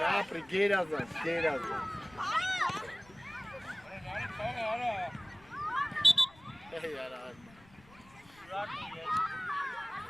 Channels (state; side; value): noise; left; rumble, 25 dB below the sound